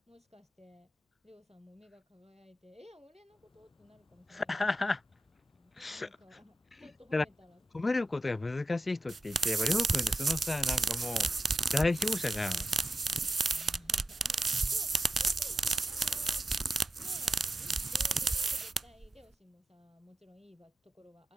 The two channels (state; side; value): normal; both; correlation 0.89